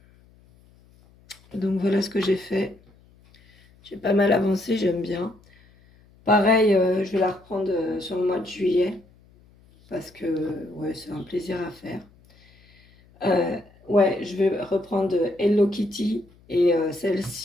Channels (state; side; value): noise; left; hum, 29 dB below the sound